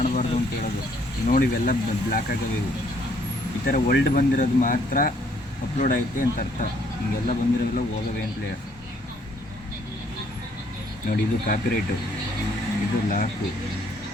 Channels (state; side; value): normal; both; correlation 0.65